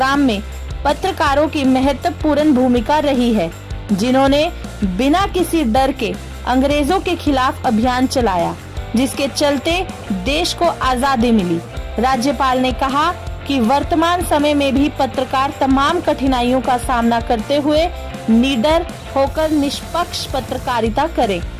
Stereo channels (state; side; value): identical; both; correlation 1.00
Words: में पत्रकारों की महत्वपूर्ण भूमिका रही है, जिन्होंने बिना किसी डर के अंग्रेजों के खिलाफ अभियान चलाया, जिसके चलते देश को आजादी मिली। राज्यपाल ने कहा कि वर्तमान समय में भी पत्रकार तमाम कठिनाइयों का सामना करते हुए निडर होकर निष्पक्ष पत्रकारिता करें।